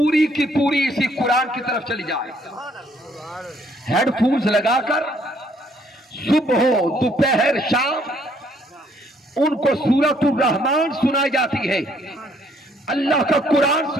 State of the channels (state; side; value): normal; both; correlation 0.66